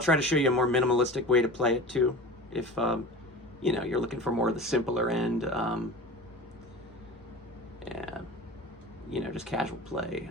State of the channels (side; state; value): both; normal; correlation 0.35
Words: to show you a more minimalistic way to play it too. If you know, you're looking for more of the simpler end, and you know, just casual play.